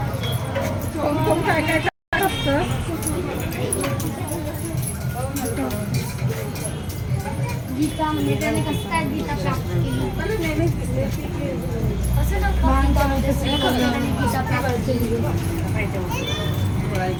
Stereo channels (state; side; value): identical; both; correlation 1.00